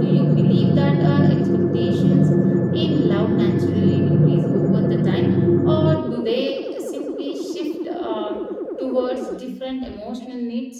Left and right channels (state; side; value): identical; both; correlation 1.00